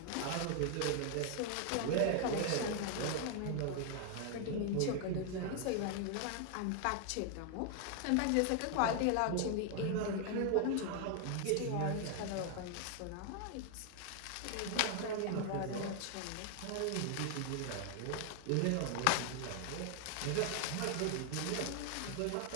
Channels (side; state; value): both; different; correlation 0.00